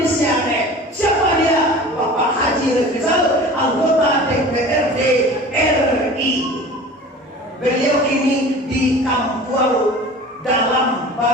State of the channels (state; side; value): normal; both; correlation 0.40